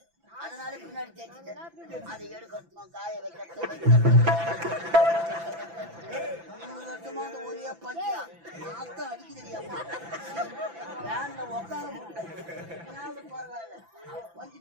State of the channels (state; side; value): late; left; 5.9 ms